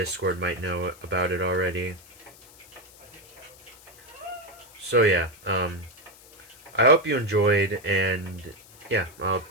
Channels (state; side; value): noise; left; hiss, 23 dB below the sound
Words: might know about it already. So yeah, I hope you enjoyed, and yeah, I'll